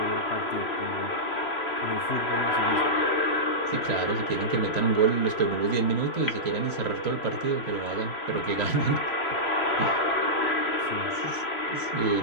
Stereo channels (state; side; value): late; right; 3.0 ms